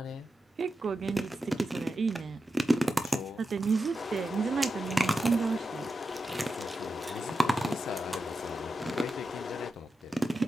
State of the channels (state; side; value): normal; both; correlation 0.90